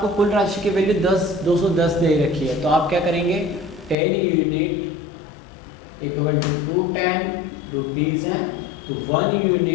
कुल राशि की वैल्यू 210 दे रखी है। तो आप क्या करेंगे 10 यूनिट इक्वल टू 210 रुपीज़ हैं, तो 1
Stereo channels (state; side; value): drops out; right; at 4.0 s